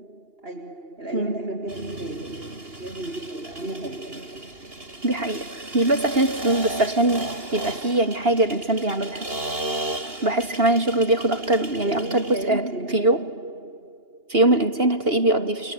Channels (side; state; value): left; late; 2.8 ms